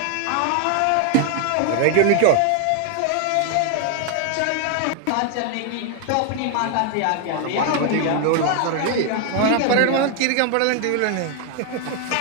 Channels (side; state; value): both; different; correlation 0.00